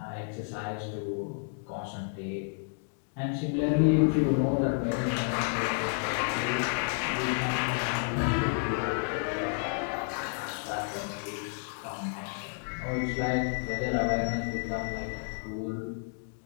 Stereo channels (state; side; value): silent; right; 57 dB below the other